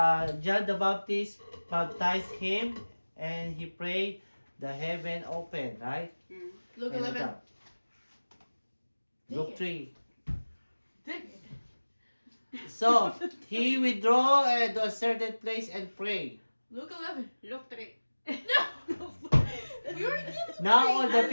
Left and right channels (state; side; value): inverted; both; correlation -1.00